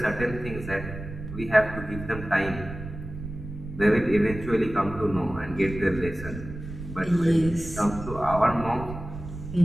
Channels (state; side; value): noise; right; rumble, 10 dB below the sound